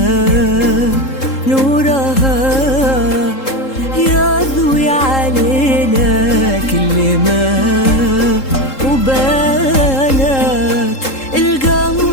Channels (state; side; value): late; right; 3.7 ms